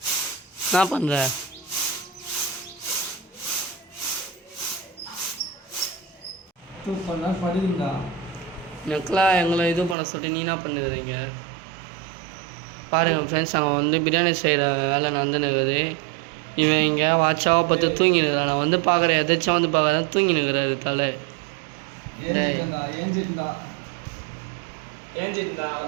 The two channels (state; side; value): drops out; left; at 10.0 s